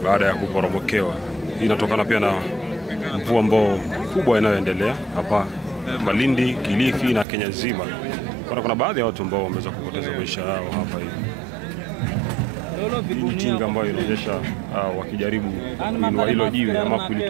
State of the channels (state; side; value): drops out; left; at 7.2 s